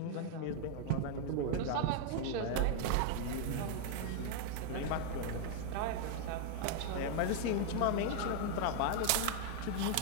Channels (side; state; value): both; different; correlation 0.00